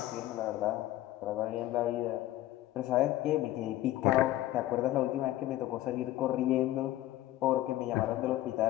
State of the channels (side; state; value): right; quieter; 15.1 dB